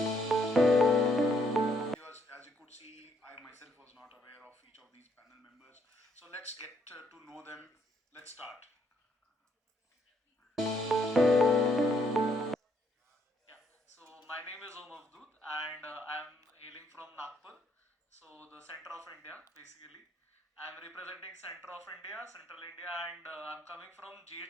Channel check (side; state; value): both; normal; correlation 0.71